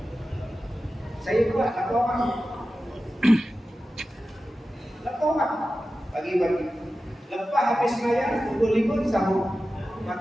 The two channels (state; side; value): normal; both; correlation 0.94